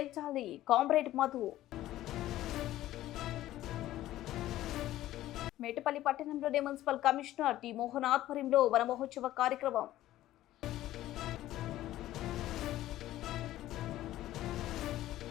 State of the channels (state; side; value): quieter; right; 14.5 dB